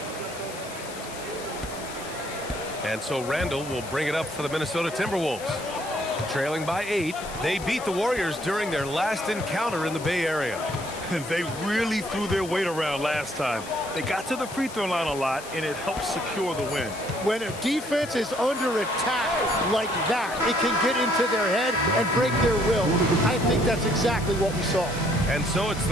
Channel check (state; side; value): noise; left; hiss, 15 dB below the sound